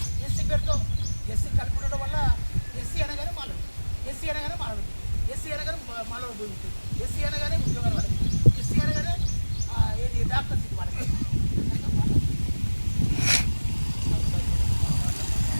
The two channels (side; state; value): both; inverted; correlation -1.00